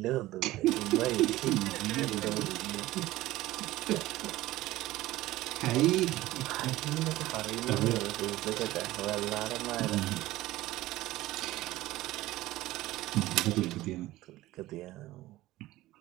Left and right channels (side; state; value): left; quieter; 16.9 dB